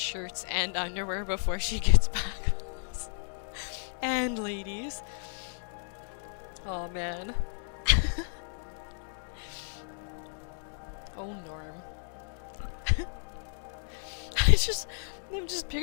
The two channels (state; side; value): silent; right; 56 dB below the other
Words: and underwear before she gets back. And ladies. Oh man. Oh Norm. I'm just